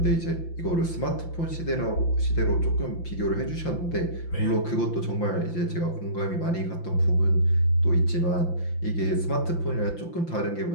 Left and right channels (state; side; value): late; right; 5.8 ms